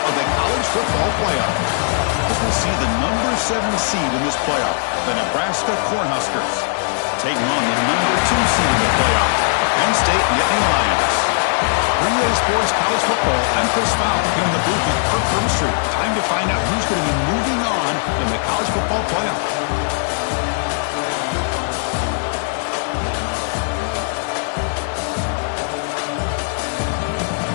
of the college football playoff. As we'll see the number 7 seed in this playoff, the Nebraska Cornhuskers, taking on the number 2 seed in the playoff, the Penn State Nittany Lions. 3A Sports College Football, I'm Chris Fowler, here in the booth with Kirk Herbstreit. Time to find out who's going to be moving on in the college football playoff.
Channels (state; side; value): silent; right; digital silence